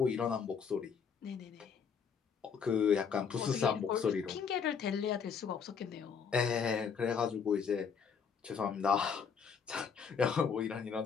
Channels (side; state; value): right; quieter; 6.5 dB